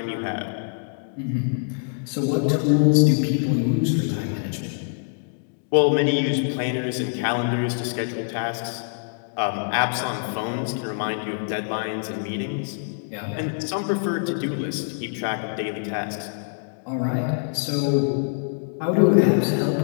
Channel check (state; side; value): silent; right; digital silence